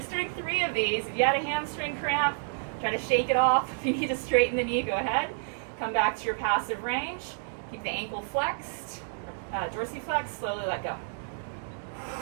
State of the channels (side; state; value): left; silent; digital silence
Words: doing 3 of these. If you had a hamstring cramp, try to shake it off. If you need to straighten the knee, go ahead. Come back to your passive range. Keep the ankle flexed, dorsiflex. Slowly let go.